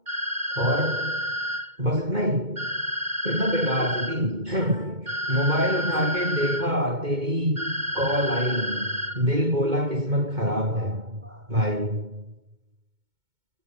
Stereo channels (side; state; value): left; late; 2.2 ms